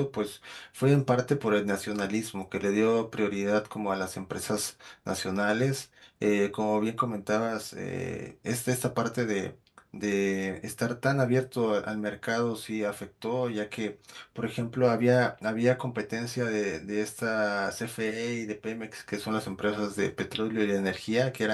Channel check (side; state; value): both; identical; correlation 1.00